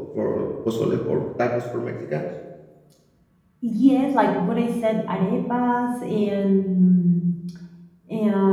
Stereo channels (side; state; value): both; identical; correlation 1.00